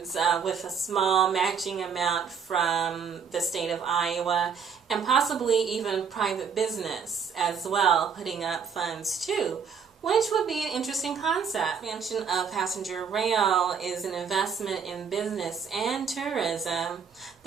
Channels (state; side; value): quieter; left; 6.6 dB